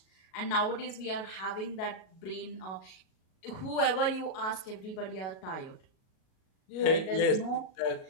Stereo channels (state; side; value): late; right; 37 ms